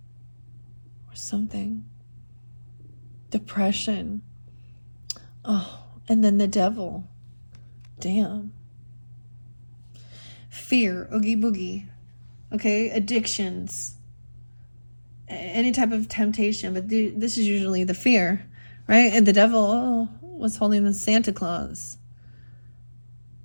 Or something. Depression. Oh, and then the devil. Damn. Fear. Oogie boogie. Okay, addictions. Any type of temptation. But this is usually the fear, right? And the devil was holding the Santa Claus.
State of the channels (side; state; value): both; inverted; correlation -1.00